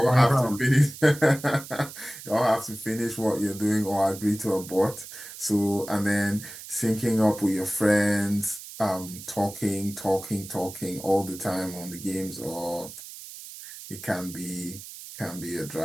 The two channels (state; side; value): noise; right; hiss, 13 dB below the sound